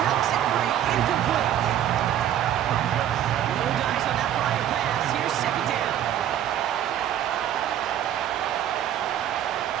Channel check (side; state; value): left; quieter; 10.9 dB